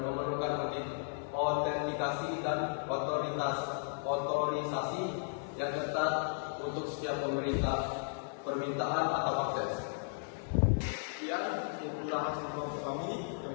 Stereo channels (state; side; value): silent; right; digital silence